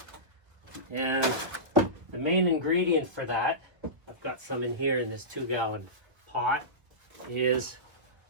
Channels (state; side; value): late; left; 1.4 ms